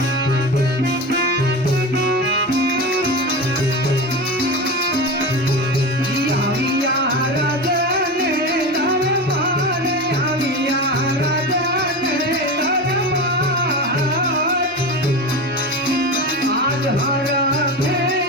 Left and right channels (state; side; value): normal; both; correlation 0.24